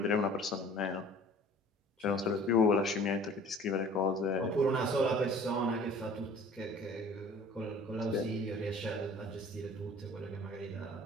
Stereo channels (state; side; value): normal; both; correlation 0.48